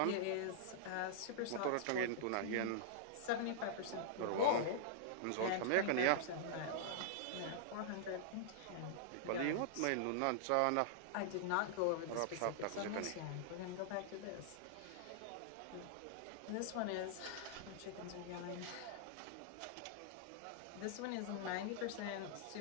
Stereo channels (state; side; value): different; both; correlation -0.01